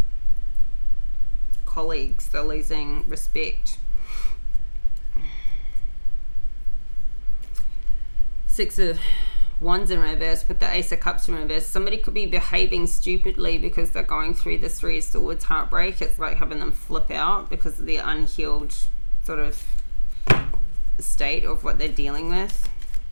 colleagues, they're losing respect. 6 of Wands in reverse with the Ace of Cups in reverse. Somebody could be behaving stupidly because they're going through this 3 of Swords heartbreak. It's like having them flip out because of the unhealed sort of state of what they're dealing with.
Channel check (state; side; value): inverted; both; correlation -1.00